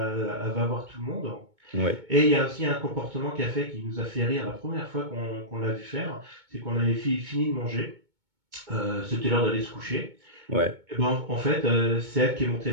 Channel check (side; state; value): left; late; 2.2 ms